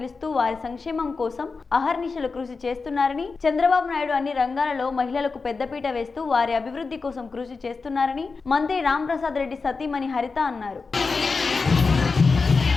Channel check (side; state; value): right; quieter; 4.4 dB